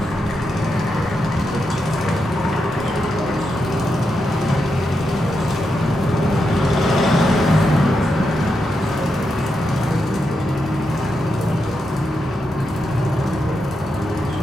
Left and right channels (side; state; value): both; normal; correlation 0.85